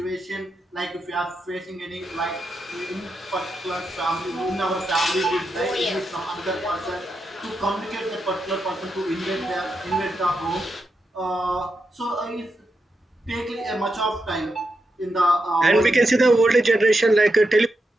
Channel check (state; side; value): normal; both; correlation 0.86